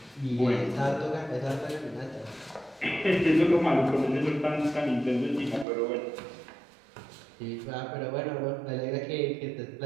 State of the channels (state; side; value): drops out; left; at 5.7 s